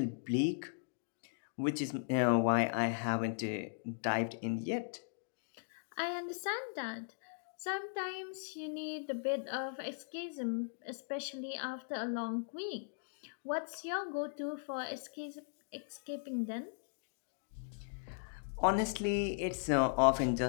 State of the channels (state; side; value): silent; right; digital silence